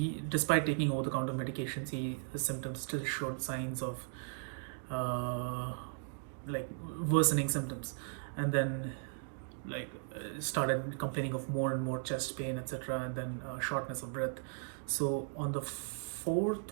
despite taking over-the-counter medications, his symptoms still showed signs of like worsening symptoms, and then started complaining of more and more chest pain, etc., and then shortness of breath. So on the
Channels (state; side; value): silent; left; 53 dB below the other